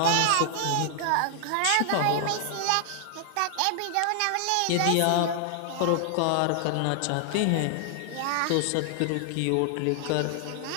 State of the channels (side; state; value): both; different; correlation 0.00